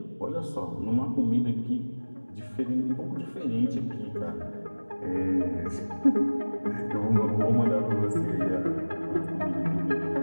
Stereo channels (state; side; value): inverted; both; correlation -1.00